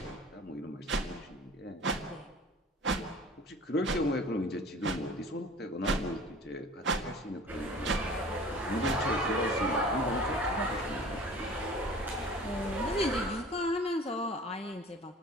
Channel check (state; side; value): normal; both; correlation 0.44